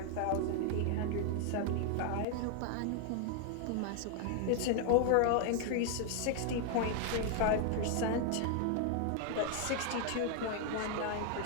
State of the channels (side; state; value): both; different; correlation 0.00